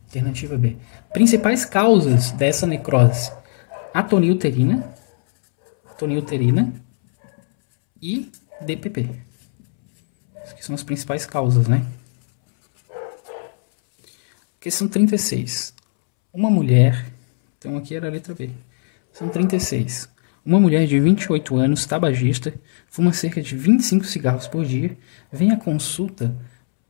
Alternativa B. Principais causas dessa necrose: atonia uterina e DPP. Essas são as principais causas, né? Questão 36. Uma mulher... Então aqui era a letra B. São 36. Uma mulher de 28 anos, tabagista, fuma cerca de 25 cigarros por dia, vem à consulta,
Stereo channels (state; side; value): silent; right; 66 dB below the other